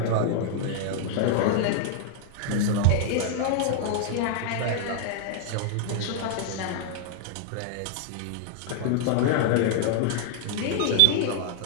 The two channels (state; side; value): different; both; correlation 0.00